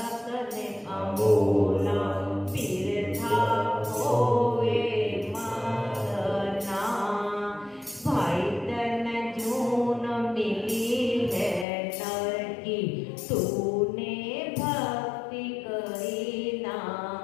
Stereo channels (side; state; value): right; drops out; at 11.7 s